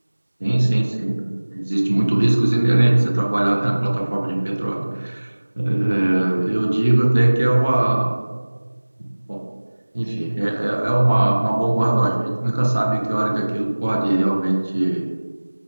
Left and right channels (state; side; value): inverted; both; correlation -1.00